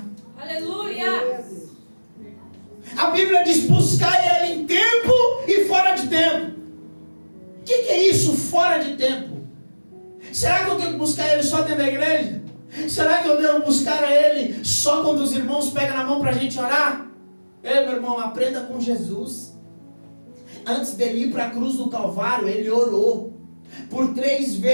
Aleluia! A Bíblia diz, buscar Ele em tempo e fora de tempo. O que é isso, fora de tempo? Será que eu tenho que buscar Ele só dentro da igreja? Será que eu devo buscar a Ele só quando os irmãos pegam na mão para a gente orar? Meu irmão, aprenda com Jesus. Antes dele ir para a cruz do Calvário, Ele orou. Por 3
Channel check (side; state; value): both; inverted; correlation -1.00